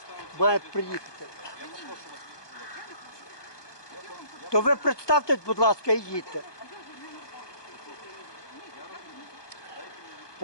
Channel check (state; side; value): late; right; 1.2 ms